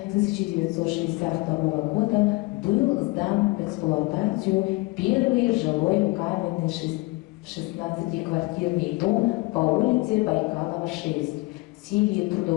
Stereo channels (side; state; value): right; quieter; 23.6 dB